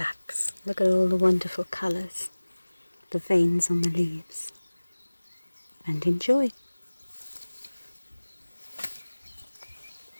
Look at all the wonderful colours, the veins on the leaves, and enjoy.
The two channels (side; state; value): both; inverted; correlation -1.00